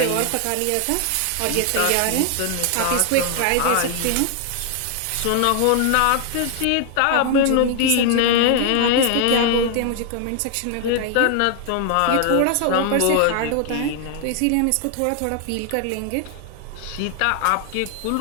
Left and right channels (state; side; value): different; both; correlation 0.00